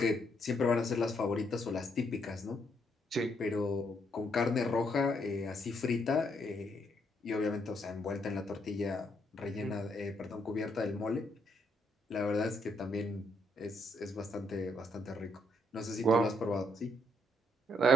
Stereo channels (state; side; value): normal; both; correlation 0.73